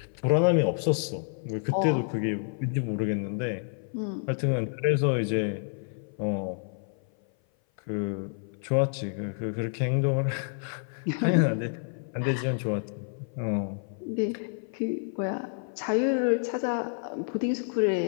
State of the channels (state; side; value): silent; right; 56 dB below the other